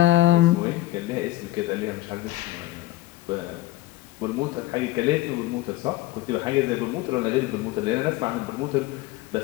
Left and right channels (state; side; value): quieter; right; 16.8 dB